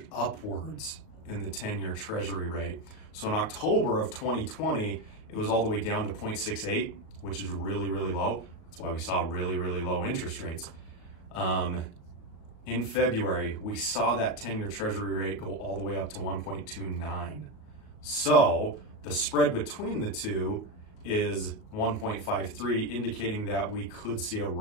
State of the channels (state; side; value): late; right; 38 ms